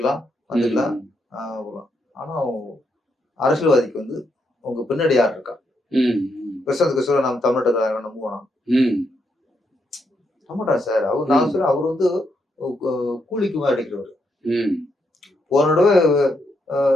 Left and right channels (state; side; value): normal; both; correlation 0.79